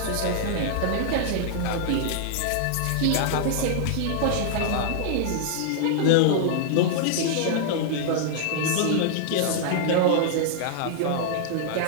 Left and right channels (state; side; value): different; both; correlation -0.01